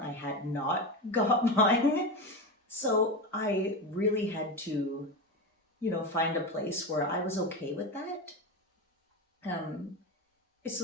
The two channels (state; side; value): normal; both; correlation 0.20